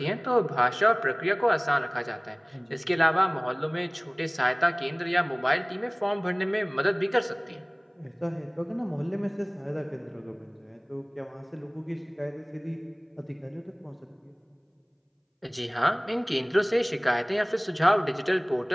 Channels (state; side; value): identical; both; correlation 1.00